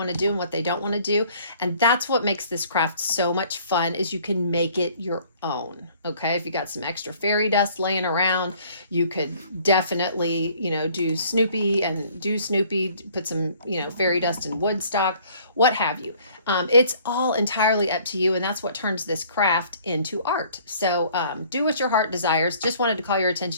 to do and what they don't want to do. And that's what makes this craft so much fun, is you can make it your own. Okay. If you got some extra fairy dust laying around, you could definitely, do Snoopy, put some, fairy dust in Woodstock, what have you. It's all entirely up to you. And that's what turns this craft into art. So do what your heart desires. Just wanted to call your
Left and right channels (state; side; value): inverted; both; correlation -0.56